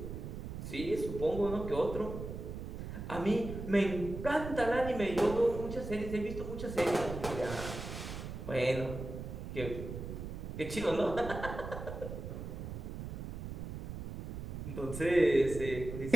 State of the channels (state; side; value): noise; right; rumble, 7 dB below the sound